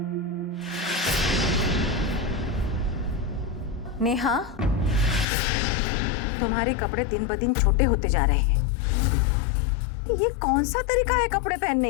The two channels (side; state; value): right; drops out; at 5.2 s